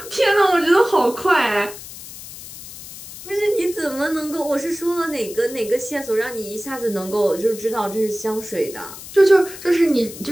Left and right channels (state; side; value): noise; left; hiss, 14 dB below the sound